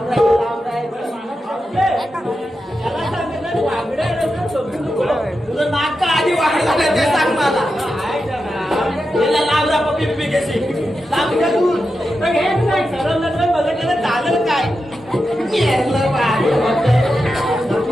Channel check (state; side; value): normal; both; correlation 0.89